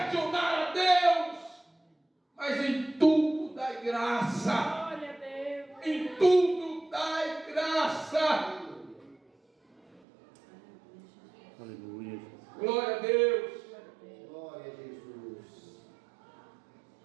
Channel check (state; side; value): drops out; left; at 10.0 s